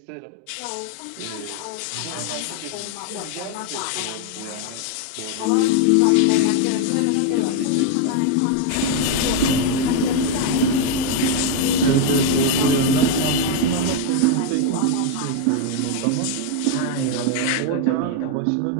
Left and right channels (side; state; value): both; different; correlation 0.01